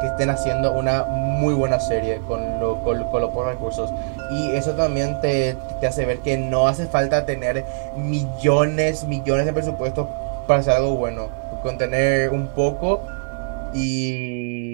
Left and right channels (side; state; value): left; silent; digital silence